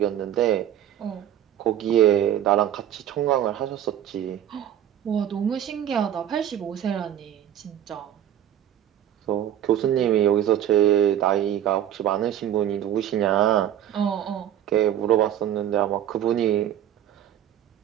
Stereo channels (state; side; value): quieter; left; 10.8 dB